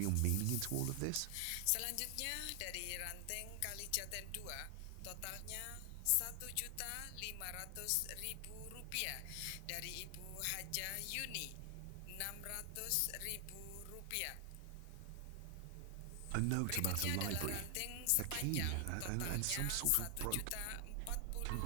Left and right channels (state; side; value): different; both; correlation 0.00